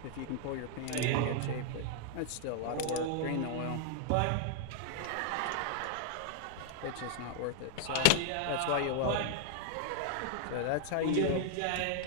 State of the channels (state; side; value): different; both; correlation 0.00